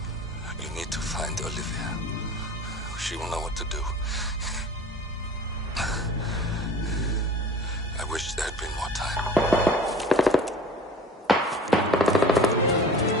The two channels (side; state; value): both; normal; correlation 0.42